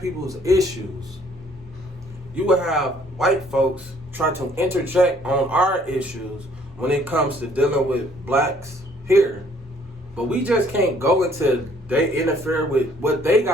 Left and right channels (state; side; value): normal; both; correlation 0.61